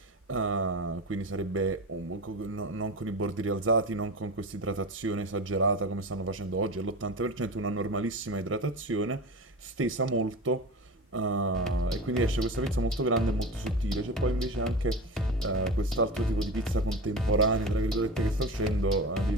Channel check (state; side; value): normal; both; correlation 0.28